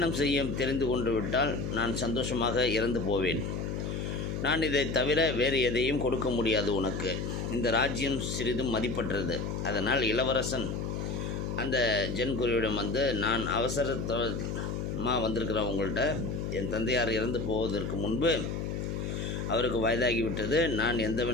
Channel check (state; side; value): noise; left; hum, 3 dB below the sound